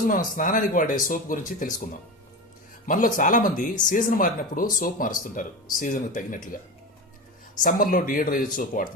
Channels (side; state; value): both; normal; correlation 0.24